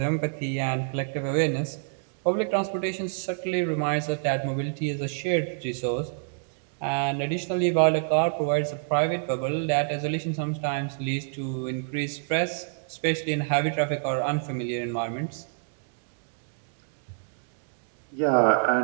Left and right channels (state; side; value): silent; left; digital silence